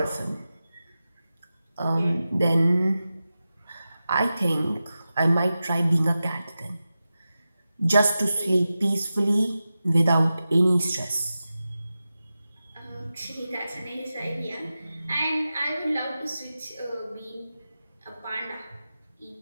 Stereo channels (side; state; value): both; inverted; correlation -0.93